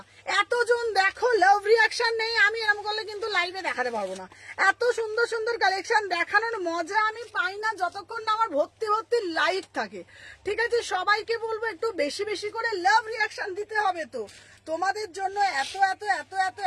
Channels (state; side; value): identical; both; correlation 1.00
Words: এতজন দেখো লাভ রিয়াকশন নেই, আমি এরকম করলে কিন্তু লাইভে দেখাতে পারবো না। এত সুন্দর কালেকশন দেখানোর মজা আমি পাই না যতক্ষণ না আমার ভর্তি লাইভ থাকে, ঠিক আছে। সবাইকে বলবো একটু বেশি করে লাভ রিয়াকশন দিতে হবে। তো তোমাদের জন্য